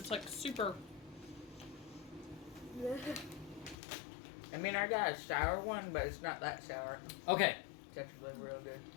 like super. I mean, I got a sour one, but it's not that sour. Okay. It's actually real good.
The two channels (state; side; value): drops out; right; at 3.8 s